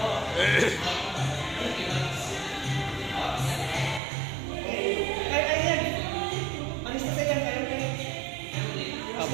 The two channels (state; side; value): drops out; left; at 4.0 s